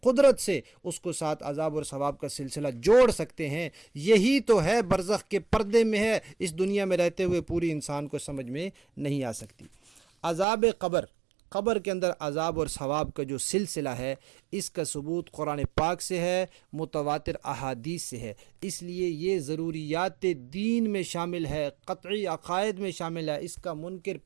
قدرت سے اس کو ساتھ عذاب اور ثواب کا سلسلہ جوڑ سکتے ہیں۔ یہی تو ہے برزخ کے پردے میں ہے، اس دنیا میں رہتے ہوئے پوری انسان کو سمجھ میں نہیں آ سکتی۔ عذاب قبر، قبر کے اندر عذاب اور ثواب کا جو سلسلہ ہے اس کا ثبوت قرآن پاک سے ہے، متواتر احادیث سے ہے، اس لیے یہ ضروریات دین میں شامل ہے، قطعی عقائد میں شامل ہے۔ اس کا منکر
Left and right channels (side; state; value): left; drops out; at 10.5 s